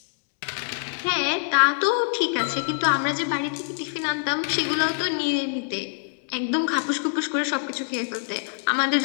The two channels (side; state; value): right; silent; 62 dB below the other